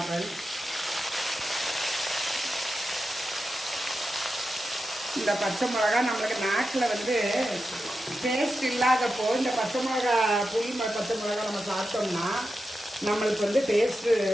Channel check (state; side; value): normal; both; correlation 0.90